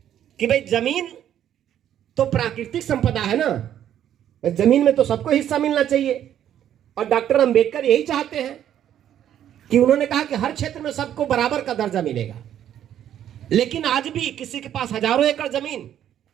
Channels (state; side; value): quieter; left; 10.6 dB